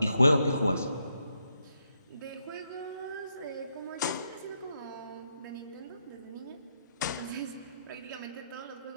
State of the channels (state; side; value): inverted; both; correlation -0.79